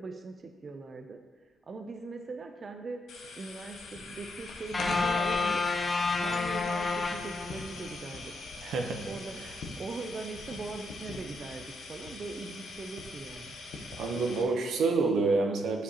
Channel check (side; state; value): both; normal; correlation 0.76